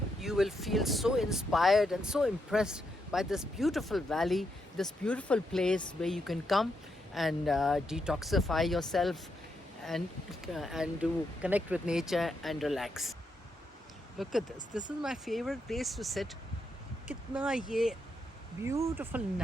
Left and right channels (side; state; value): both; normal; correlation 0.81